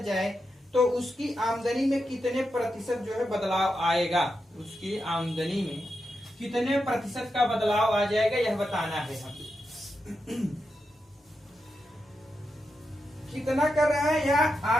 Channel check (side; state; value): both; normal; correlation 0.87